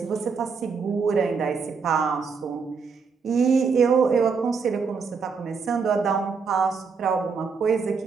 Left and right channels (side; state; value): left; quieter; 5.4 dB